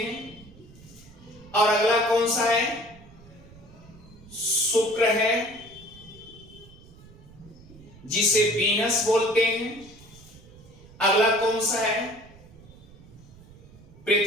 और अगला कौन सा है? शुक्र है, जिसे वीनस बोलते हैं। अगला कौन सा है?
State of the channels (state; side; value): noise; right; rumble, 22 dB below the sound